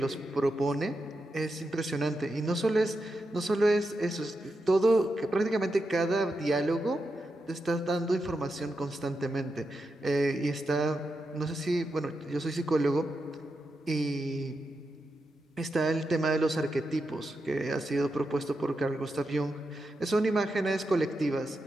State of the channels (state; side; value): normal; both; correlation 0.87